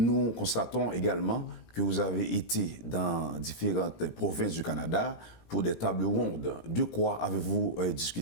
constatons également que vous avez été dans différentes provinces du Canada pour des tables rondes. De quoi avez-vous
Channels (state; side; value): late; right; 17 ms